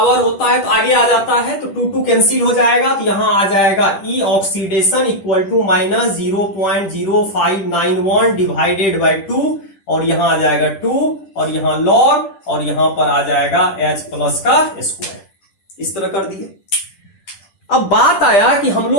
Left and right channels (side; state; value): right; late; 10 ms